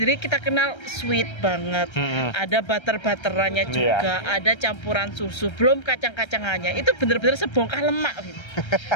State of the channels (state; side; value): late; right; 1.3 ms